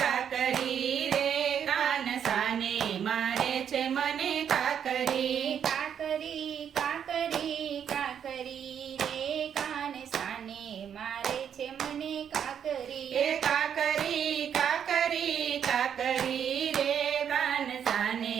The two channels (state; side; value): quieter; left; 8.4 dB